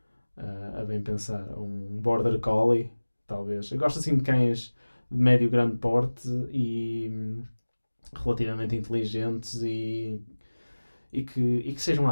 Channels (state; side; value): inverted; both; correlation -1.00